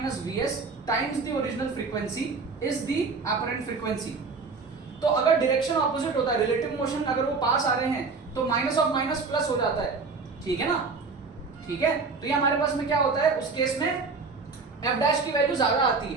vs times the original frequency is the apparent frequency. तो अगर डायरेक्शन ऑपोजिट होता है, रिलेटिव मोशन अगर वो पास आ रहे हैं तो माइनस ऑफ माइनस प्लस हो जाता है। ठीक है ना, ठीक है, तो ये हमारे पास में क्या होता है, उस केस में f' की वैल्यू ज्यादा आती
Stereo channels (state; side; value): quieter; left; 4.5 dB